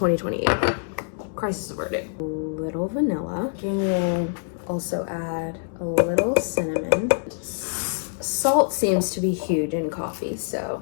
Crisis averted. A little vanilla. We'll also add a little cinnamon. Salt seems to be huge in coffee,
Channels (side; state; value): right; silent; digital silence